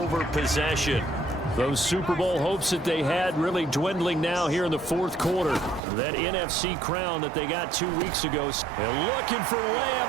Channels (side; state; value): left; drops out; at 5.8 s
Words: possession. Those Super Bowl hopes that they had really dwindling now here in the fourth quarter. That NFC crown that they got 2 weeks ago. They're looking for